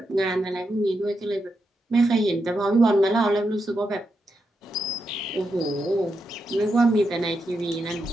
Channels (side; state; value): both; normal; correlation 0.85